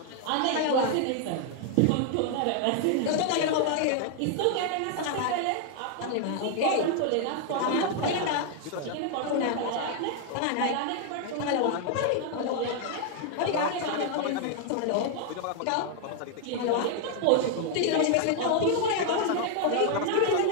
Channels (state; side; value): different; both; correlation 0.00